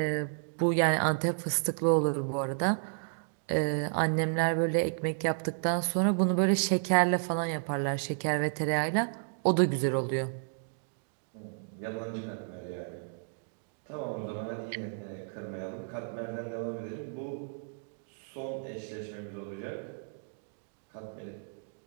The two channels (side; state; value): left; silent; digital silence